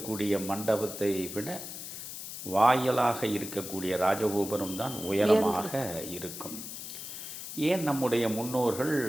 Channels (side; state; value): left; noise; hiss, 9 dB below the sound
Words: மண்டபத்தை விட வாயிலாக இருக்கக்கூடிய ராஜகோபுரம் தான் உயரமாக இருக்கும். ஏன் நம்முடைய முன்னோர்கள்